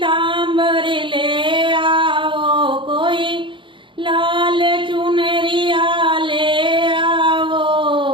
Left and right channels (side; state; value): left; late; 0.24 ms